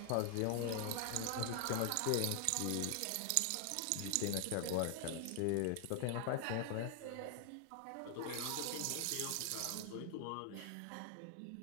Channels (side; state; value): both; different; correlation 0.00